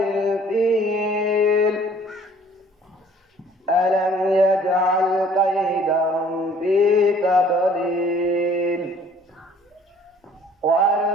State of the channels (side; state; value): both; normal; correlation 0.55